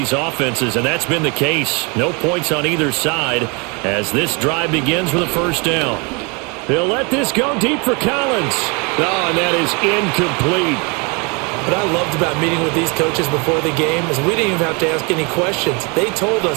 offenses, and that's been the case. No points on either side as this drive begins with a 1st down. They'll let this go deep for Collins. Oh, and that is incomplete. What I loved about meeting with these coaches before the game is we didn't even have to ask any questions. They told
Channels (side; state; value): left; quieter; 31.0 dB